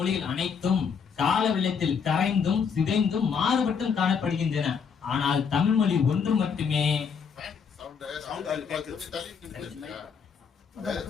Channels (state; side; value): quieter; right; 6.3 dB